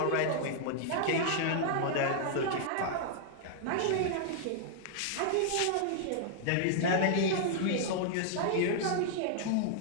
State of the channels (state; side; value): different; both; correlation -0.01